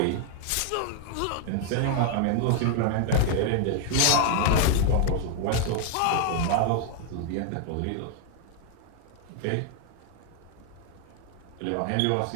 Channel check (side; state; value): both; different; correlation 0.00